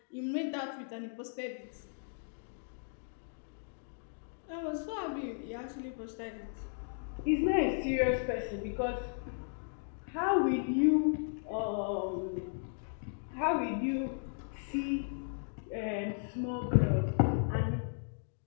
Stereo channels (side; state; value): right; silent; digital silence